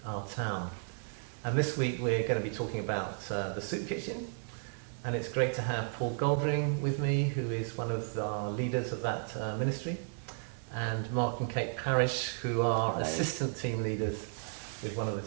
our town. And this week we're going to be talking about the Soup Kitchen, and it's great to have Paul Goldring with me, who is one of our leaders of that ministry, and Mark and Kate Parrish, who are Hello. assistant team leaders with one of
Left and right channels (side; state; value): left; silent; digital silence